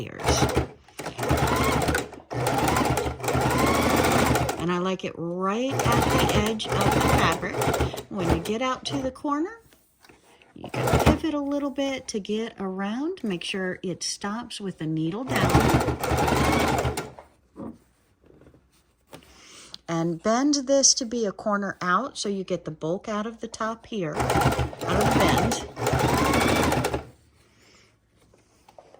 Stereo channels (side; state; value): both; identical; correlation 1.00